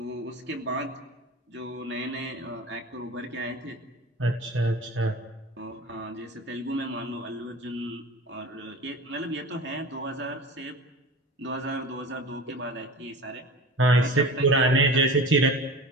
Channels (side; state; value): both; normal; correlation 0.35